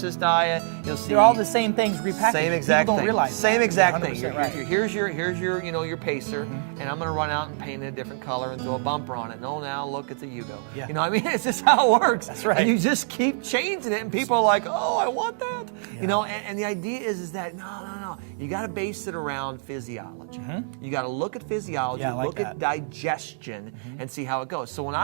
diet. You'll see they're all the same things repackaged. same exact People don't thing. realize Same that. exact thing. 100% right. Here's your you know, your pacer, and I'm gonna run out and paint it a different color and throw a bumper on it. No, now look, it's a Yugo. Yeah. You know, what I mean, it's just how it works. That's right. And you just keep changing it, and people are like, oh, I want that. Yeah. You know, and the idea is that no. You got to base it around physiology. You got to look at physiology, look at digestion, and see how it goes. So when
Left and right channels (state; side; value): silent; left; digital silence